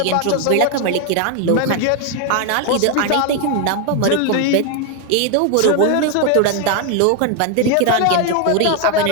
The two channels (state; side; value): different; both; correlation 0.01